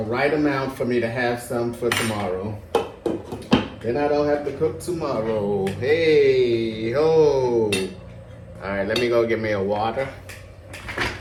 right amount for me to have some for tomorrow. Then I don't have to cook tomorrow. Hey, ho. All right, let me go get me a water.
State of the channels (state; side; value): identical; both; correlation 1.00